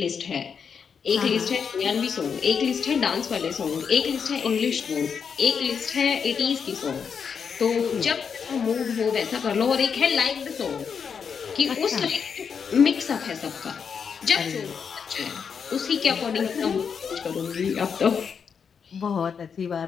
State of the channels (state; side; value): quieter; right; 6.6 dB